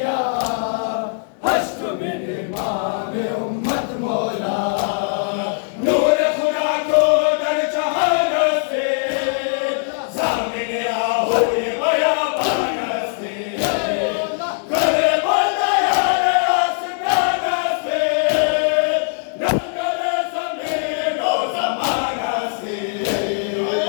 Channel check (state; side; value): silent; right; 61 dB below the other